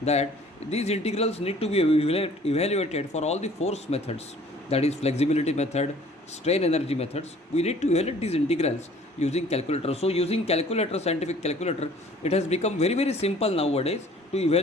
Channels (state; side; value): normal; both; correlation 0.53